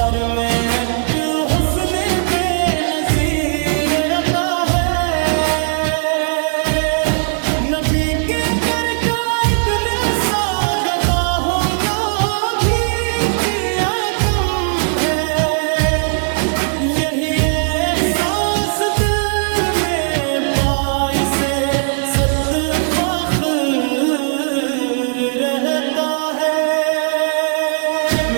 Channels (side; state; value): left; silent; digital silence